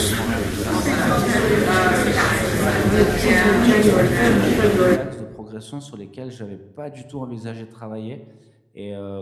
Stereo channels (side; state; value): both; identical; correlation 1.00